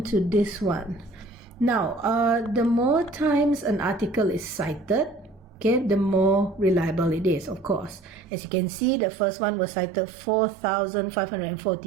to this one. Now, the more times an article is cited, okay, the more reliable it is, of course. As you can see, the first one was cited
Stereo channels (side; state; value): left; drops out; at 8.2 s